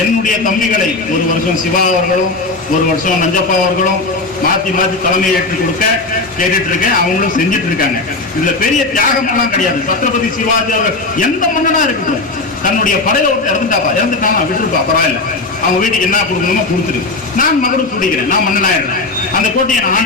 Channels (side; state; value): right; quieter; 3.4 dB